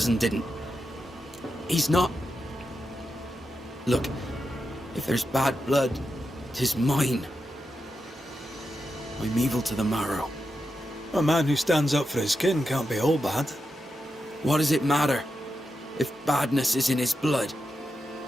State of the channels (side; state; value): both; normal; correlation 0.88